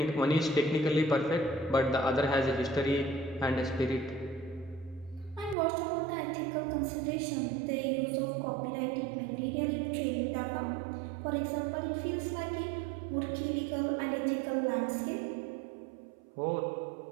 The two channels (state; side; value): drops out; left; at 5.6 s